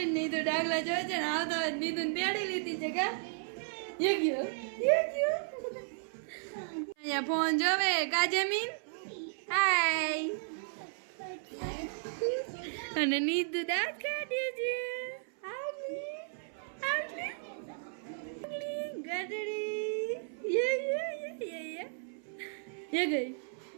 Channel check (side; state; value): left; silent; 55 dB below the other